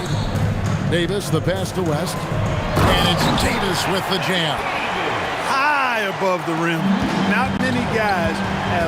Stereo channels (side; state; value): both; identical; correlation 1.00